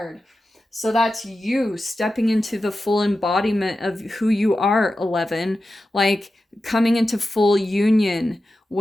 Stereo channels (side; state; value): both; normal; correlation 0.92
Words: So that's you stepping into the full embodiment of who you are, 11, like coming into full union